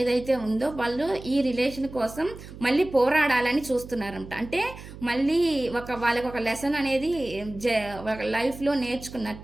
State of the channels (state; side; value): noise; right; hum, 15 dB below the sound